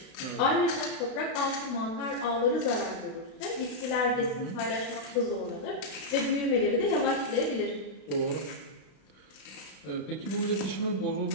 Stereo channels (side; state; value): right; late; 32 ms